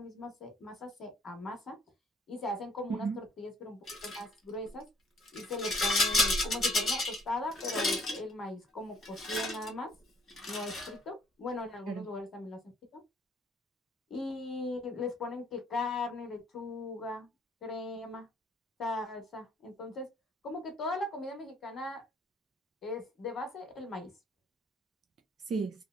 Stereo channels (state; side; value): normal; both; correlation 0.61